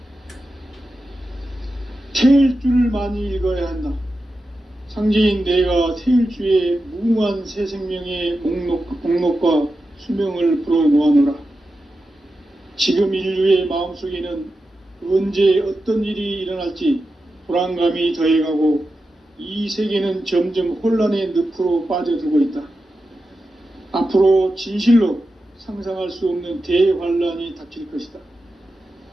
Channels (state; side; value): normal; both; correlation 0.91